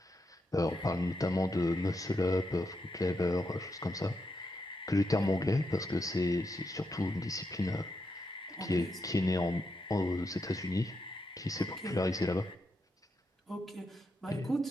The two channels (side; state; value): both; normal; correlation 0.83